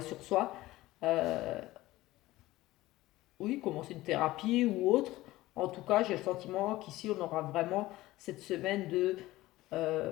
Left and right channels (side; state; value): right; quieter; 17.5 dB